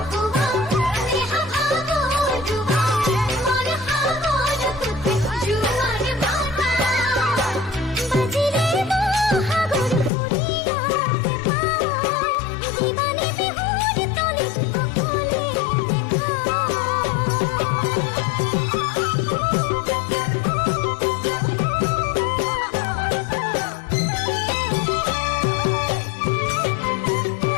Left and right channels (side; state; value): right; drops out; at 10.1 s